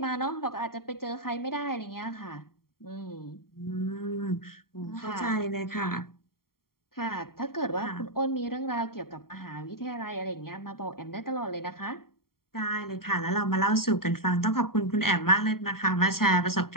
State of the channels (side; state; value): right; late; 0.93 ms